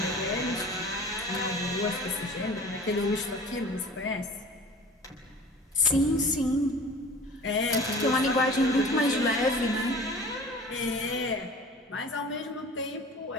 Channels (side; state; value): both; normal; correlation 0.42